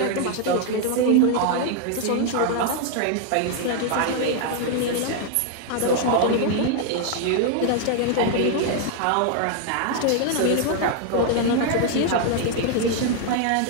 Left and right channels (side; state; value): both; different; correlation 0.00